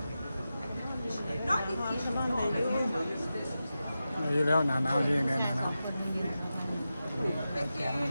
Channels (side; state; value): both; inverted; correlation -0.92